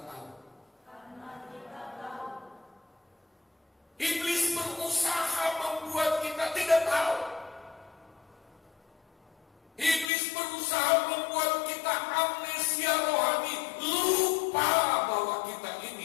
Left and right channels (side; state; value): right; drops out; at 10.1 s